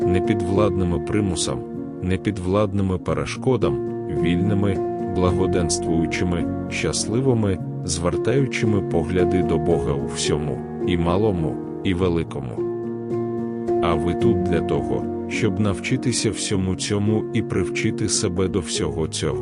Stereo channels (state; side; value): identical; both; correlation 1.00